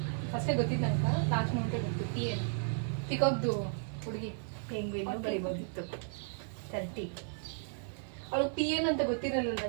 ಫಸ್ಟೇ ಗೊತ್ತಿದ್ದು ನಂಗೆ. ಲಾಸ್ಟ್ ಮೂಮೆಂಟೇ ಗೊತ್ತು. PN ಪಿಕಾಕ್ದು ಹುಡುಗಿ. ಪೆಂಗ್ವಿನ್ ಬರಿಬೋದಿತ್ತು. 30. ಅವಳು PN ಅಂತ ಗೊತ್ತಿರಲಿಲ್ಲ,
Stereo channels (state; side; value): silent; left; 55 dB below the other